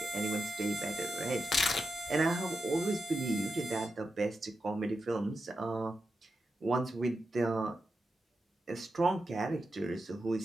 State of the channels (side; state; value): both; normal; correlation 0.88